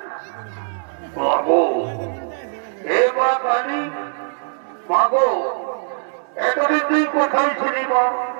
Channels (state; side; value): silent; left; 65 dB below the other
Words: মাগো এতদিন তুই কোথায় ছিলি মা